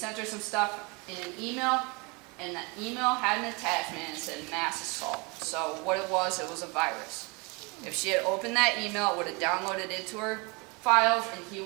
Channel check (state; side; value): quieter; left; 28.9 dB